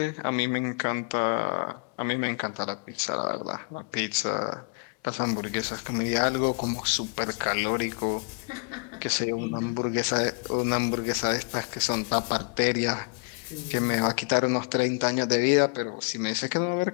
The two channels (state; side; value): quieter; right; 34.2 dB